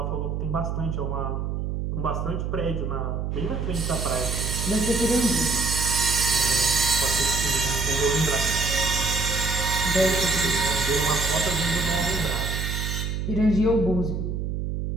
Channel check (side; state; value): right; noise; hum, 2 dB below the sound